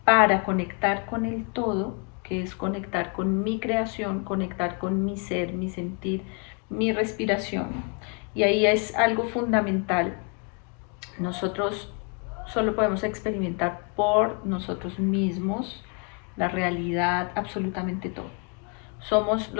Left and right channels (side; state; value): right; quieter; 37.7 dB